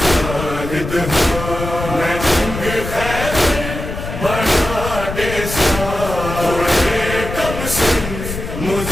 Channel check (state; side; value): noise; left; rumble, 7 dB below the sound